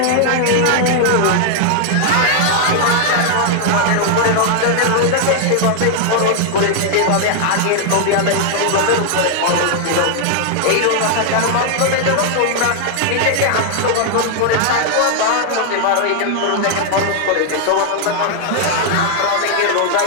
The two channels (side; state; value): both; different; correlation 0.00